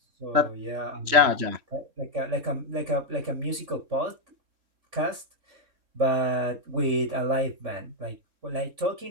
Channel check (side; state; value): left; late; 3.6 ms